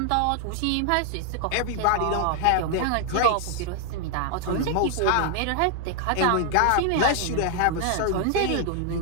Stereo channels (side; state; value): both; different; correlation 0.00